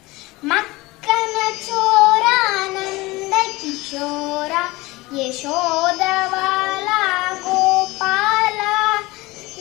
ಮಕ್ಕನ ಚೋರ ನಂದ ಕಿಶೋರ ಯಶೋದವಾಲ ಗೋಪಾಲ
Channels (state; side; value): quieter; right; 21.3 dB